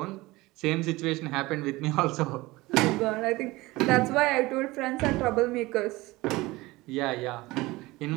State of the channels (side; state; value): left; quieter; 20.6 dB